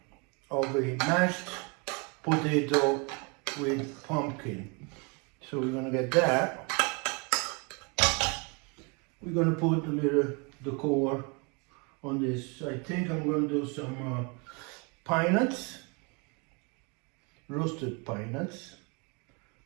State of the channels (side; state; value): left; quieter; 31.3 dB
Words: of a mashed potato with pumpkin. So we're gonna get that. We're gonna put a little decor on this. I think I'm gonna do some pine nuts, roasted pine nuts,